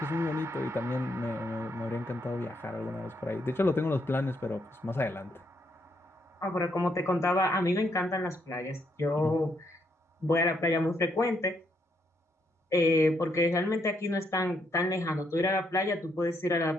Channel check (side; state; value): both; normal; correlation 0.75